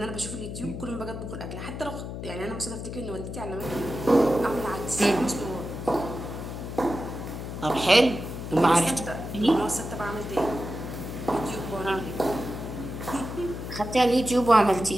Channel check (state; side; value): noise; left; hum, 7 dB below the sound